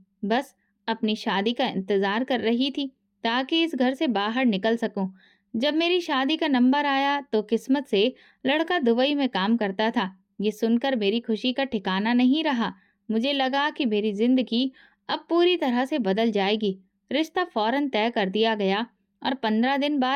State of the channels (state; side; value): identical; both; correlation 1.00